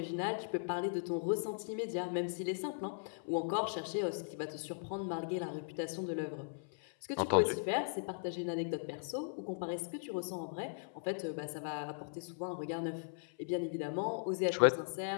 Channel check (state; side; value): silent; right; 52 dB below the other